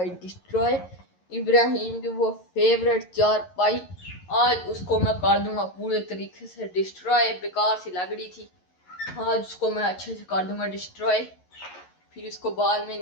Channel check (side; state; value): right; late; 11 ms